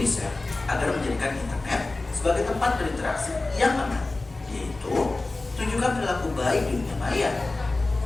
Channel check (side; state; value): right; quieter; 3.2 dB